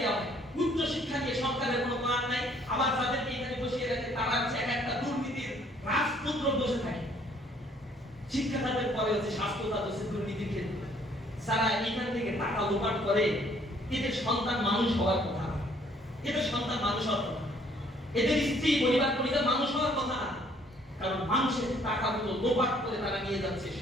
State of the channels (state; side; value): normal; both; correlation 0.62